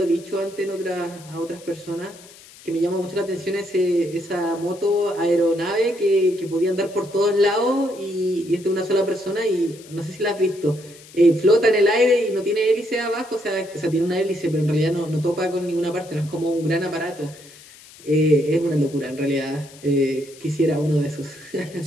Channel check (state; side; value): noise; left; hiss, 21 dB below the sound